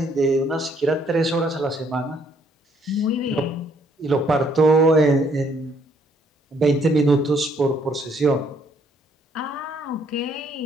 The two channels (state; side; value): normal; both; correlation 0.67